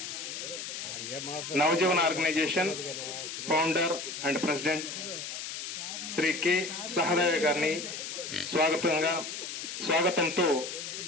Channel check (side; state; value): left; noise; hiss, 7 dB below the sound